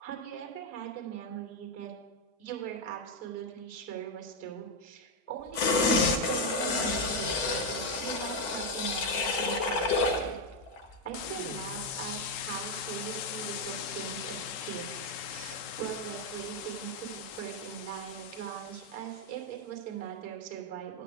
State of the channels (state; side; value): late; right; 7.0 ms